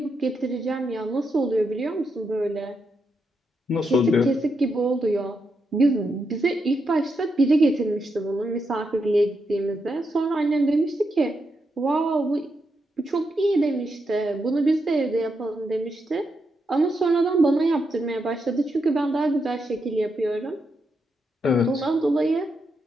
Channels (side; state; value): both; normal; correlation 0.83